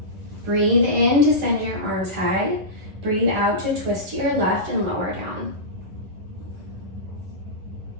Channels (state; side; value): late; left; 11 ms